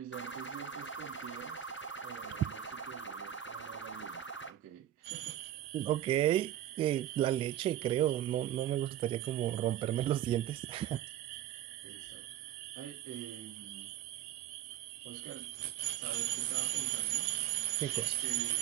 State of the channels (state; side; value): quieter; left; 11.9 dB